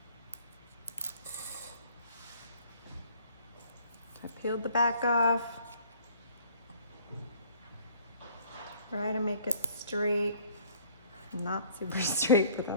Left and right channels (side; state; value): both; inverted; correlation -0.56